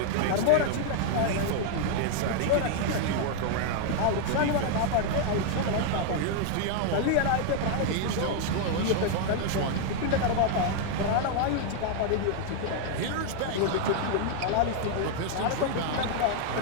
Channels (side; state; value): both; different; correlation 0.00